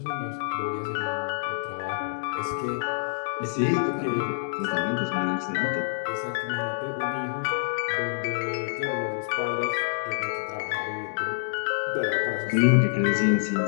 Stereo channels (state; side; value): silent; right; digital silence